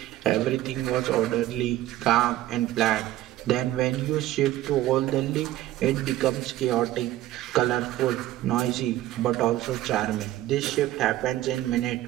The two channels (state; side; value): quieter; left; 14.8 dB